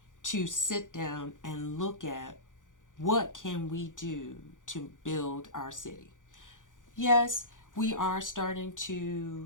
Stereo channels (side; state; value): right; late; 0.87 ms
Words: to sit down and look at what can we do to build our city. Yes, we are starting